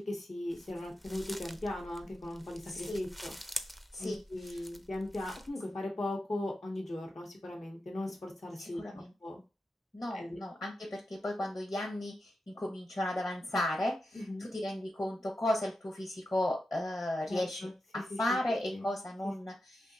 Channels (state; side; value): normal; both; correlation 0.90